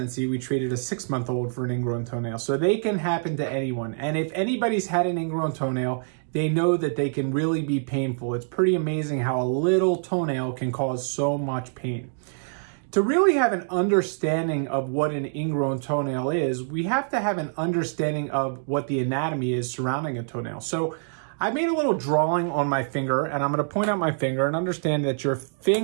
We treated a 6-month-old for an ingrown toenail. So they can happen to anyone. And if anybody's had an ingrown toenail, they know that they can really be painful. It's pretty amazing how a little toenail can cause so much pain. To really have an understanding of what an ingrown toenail is, we have to have an understanding of what the anatomy is surrounding a toenail. So I made a little drawing on my finger, and I'm going to point out my finger and understand that your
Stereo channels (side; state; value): left; silent; digital silence